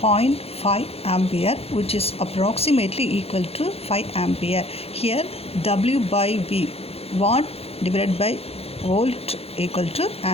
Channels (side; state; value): right; late; 0.29 ms